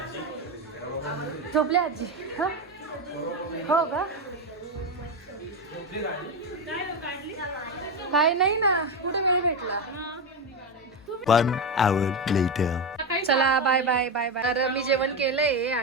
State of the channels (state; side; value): normal; both; correlation 0.13